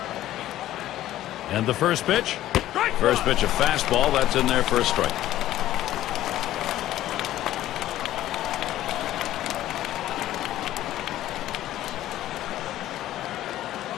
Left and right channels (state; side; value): quieter; right; 13.7 dB